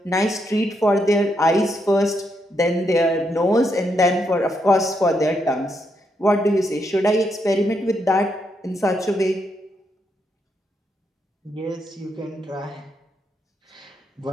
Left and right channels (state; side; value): normal; both; correlation 0.79